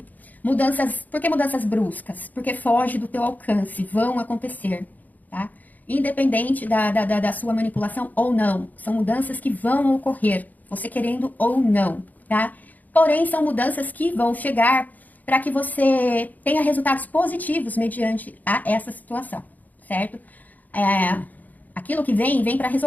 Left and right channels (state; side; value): late; right; 0.081 ms